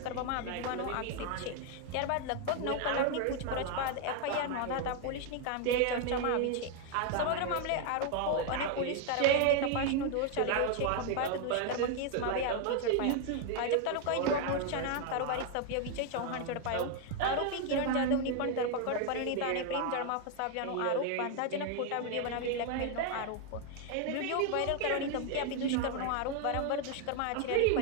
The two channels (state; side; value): different; both; correlation 0.01